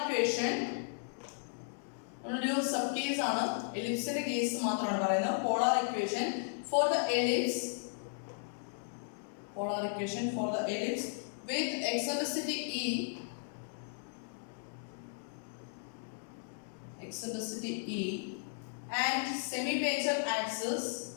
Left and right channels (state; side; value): silent; right; digital silence